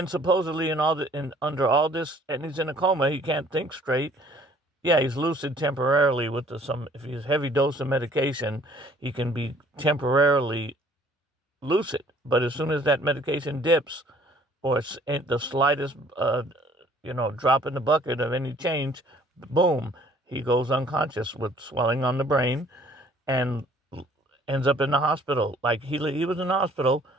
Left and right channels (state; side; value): normal; both; correlation 0.57